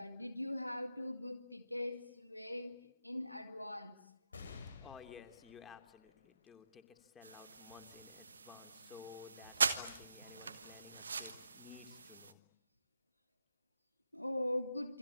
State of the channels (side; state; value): both; inverted; correlation -0.86